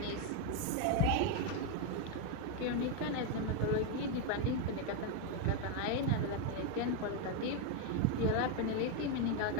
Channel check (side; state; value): both; different; correlation 0.01